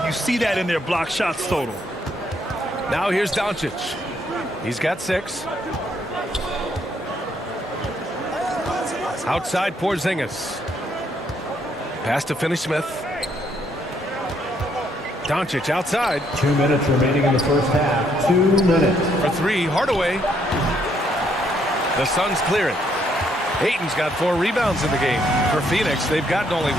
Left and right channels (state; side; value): normal; both; correlation 0.71